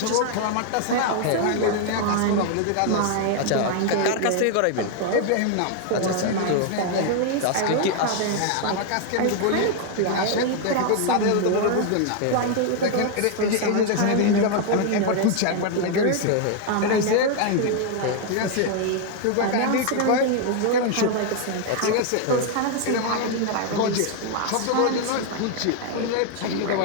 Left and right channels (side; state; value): both; different; correlation 0.00